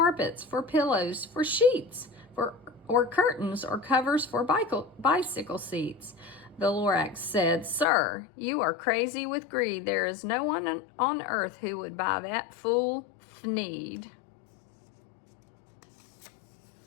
for pillows, for sheets, or curtains, or covers for bicycle seats. The Lorax said, Sir, you are crazy with greed. There is no one on earth who would buy that fool thneed.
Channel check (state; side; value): drops out; right; at 7.9 s